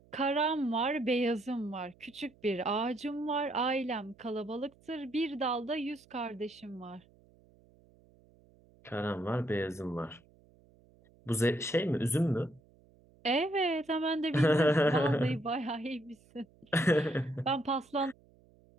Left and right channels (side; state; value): right; noise; hum, 29 dB below the sound